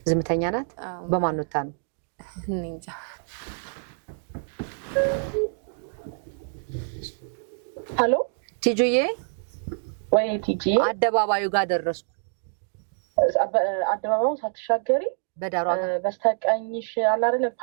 ዝምተኛ ናት። በማን ወጣ ነው? እኔ እንጃ። ሄሎ ቲጂዬ። ወይ ቲጂ፣ አደባባዩ ጋር ደረስኩ። አደባባዩን ሳትሻገሪ በዳሯ በስተቀኝሽ አለ አይደል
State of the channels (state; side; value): silent; left; digital silence